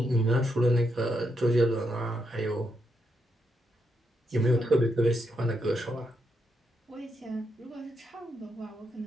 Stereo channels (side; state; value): both; normal; correlation 0.80